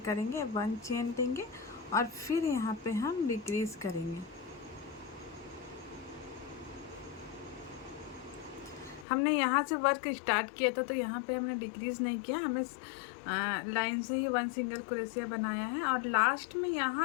1 चेन लेंगे और फिर यहाँ पे हम डिक्रीज करेंगे। हमने यहाँ से वर्क स्टार्ट किया था, तो यहाँ पे हमने डिक्रीज नहीं किया, हमें लाइन से ही 1 सिंगल क्रोशिया बनाया है। और लास्ट में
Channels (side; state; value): right; drops out; at 9.1 s